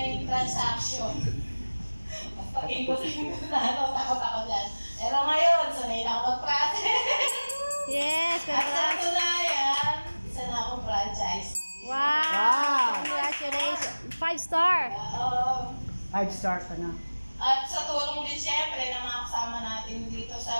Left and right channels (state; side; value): inverted; both; correlation -1.00